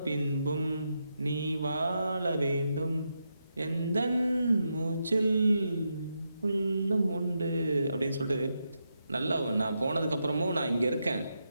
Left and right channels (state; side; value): inverted; both; correlation -0.84